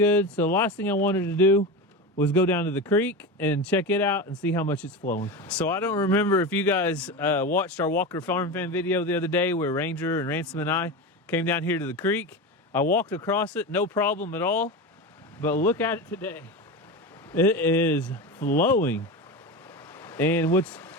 So the last thing I wanted to do was go down to the creek and check it out and see how much it's flowing. So I don't remember if you guys watched our Walker Farm Fan video the other day where Ranger and Ransom and I came down here to the creek. I walked across it, no problem at all. But look at it today. It is flowing. And what's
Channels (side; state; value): both; normal; correlation 0.23